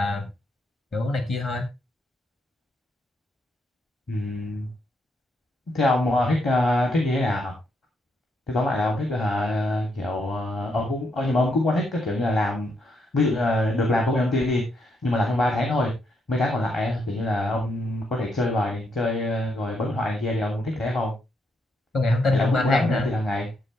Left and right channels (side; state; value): both; normal; correlation 0.78